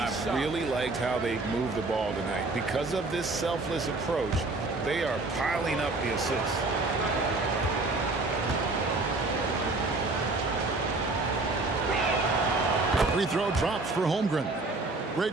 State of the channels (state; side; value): quieter; left; 3.3 dB